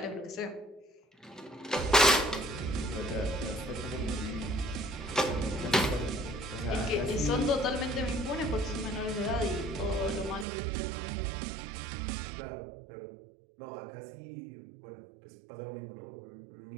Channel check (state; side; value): drops out; left; at 10.5 s